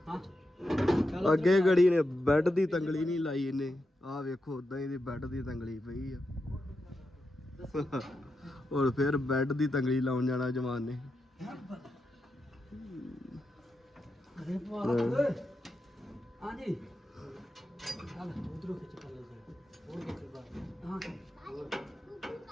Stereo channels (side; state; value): both; normal; correlation 0.87